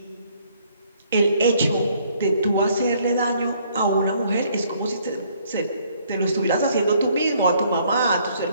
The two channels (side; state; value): both; inverted; correlation -0.64